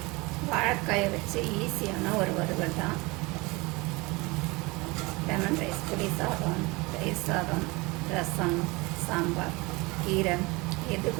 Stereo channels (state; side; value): quieter; left; 24.5 dB